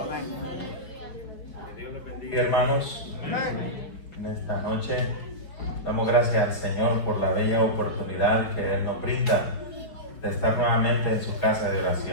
Que Dios les bendiga, hermanos. En esta noche damos gracias al Señor por la bella oportunidad que Él nos brinda de estar nuevamente en su casa de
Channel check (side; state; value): right; late; 5.4 ms